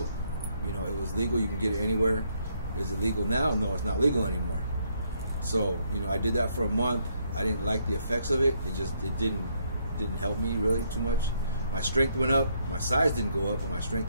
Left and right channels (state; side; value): inverted; both; correlation -0.72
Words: You know, it was legal, you can get it anywhere. Is it legal now? No, it's not legal anymore. So, you know, I did that for a month. I didn't like the effects of it. It didn't help me really too much. My strength went up. My size didn't go up, but my strength